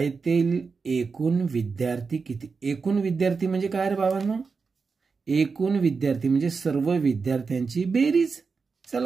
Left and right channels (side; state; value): left; quieter; 4.9 dB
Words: एकूण विद्यार्थी किती? एकूण विद्यार्थी म्हणजे काय रे बाबांनो? एकूण विद्यार्थी म्हणजे सर्व विद्यार्थ्यांची बेरीज.